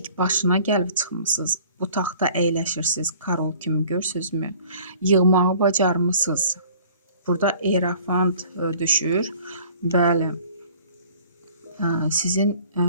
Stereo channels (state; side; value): inverted; both; correlation -0.51